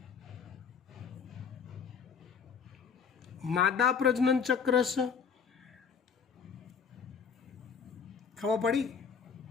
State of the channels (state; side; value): quieter; right; 6.5 dB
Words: માદા પ્રજનન ચક્ર છે. ખબર પડી?